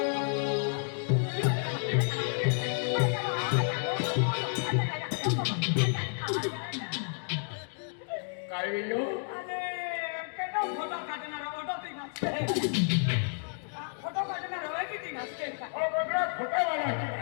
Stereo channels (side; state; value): right; silent; 57 dB below the other